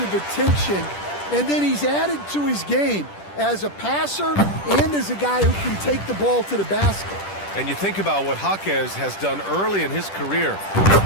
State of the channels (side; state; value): right; late; 10 ms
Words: attention, and then he's added to his game as a passer and as a guy who can take the ball to the basket. And you think about what Jaquez has done early in his career.